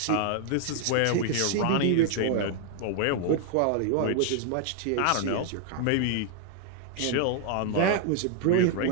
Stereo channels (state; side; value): different; both; correlation 0.00